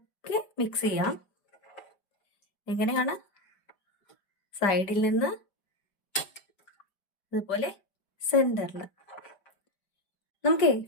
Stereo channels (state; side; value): late; right; 5.1 ms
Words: മിക്സ് ചെയ്യാം. എങ്ങനെയാണ്? സൈഡിൽ നിന്ന് അതുപോലെ സെന്ററിൽ. നമുക്ക്